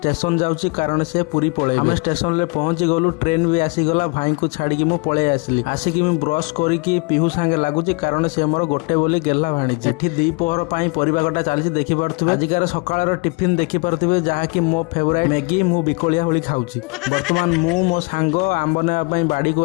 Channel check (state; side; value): quieter; right; 29.5 dB